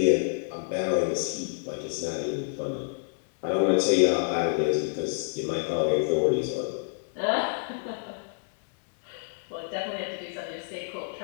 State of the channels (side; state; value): right; silent; 59 dB below the other